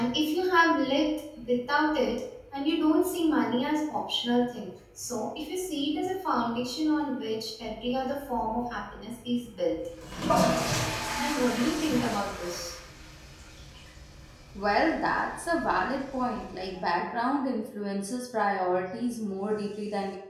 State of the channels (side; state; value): both; identical; correlation 1.00